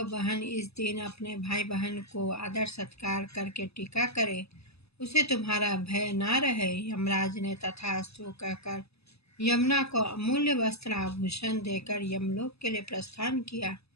बहन इस दिन अपने भाई बहन को आदर सत्कार करके टीका करे, उसे तुम्हारा भय ना रहे। यमराज ने तथास्तु कहकर यमुना को अमूल्य वस्त्र आभूषण देकर यमलोक के लिए प्रस्थान किया।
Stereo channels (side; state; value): right; late; 0.78 ms